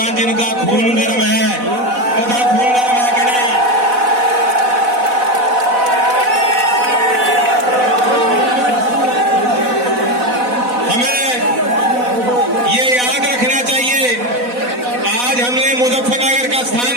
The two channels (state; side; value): late; left; 4.1 ms